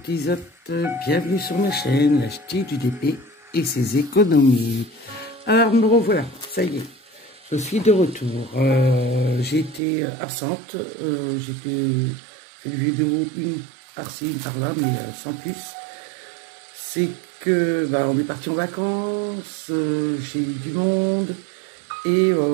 Tisotte, bienvenue sur ma chaîne, l'acheter du DP et ses économies. Alors me revoilà, ça y est, je suis de retour. J'ai été absente, j'ai fait une vidéo, une par-ci, une par-là, mais sans plus. C'est que on est parti en vacances, j'ai eu du monde et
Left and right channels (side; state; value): left; drops out; at 9.8 s